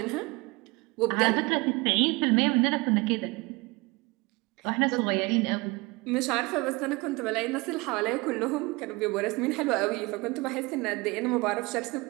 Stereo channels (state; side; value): quieter; left; 24.8 dB